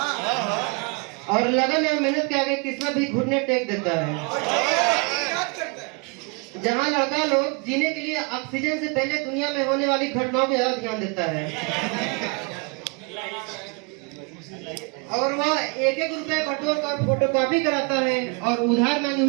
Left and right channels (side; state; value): left; quieter; 31.4 dB